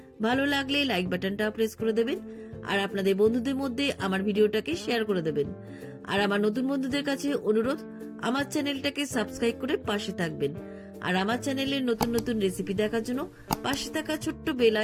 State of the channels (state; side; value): identical; both; correlation 1.00